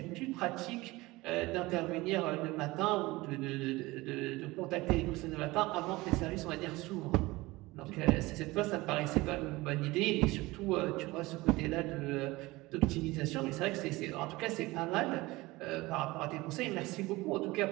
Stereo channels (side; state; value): left; quieter; 20.8 dB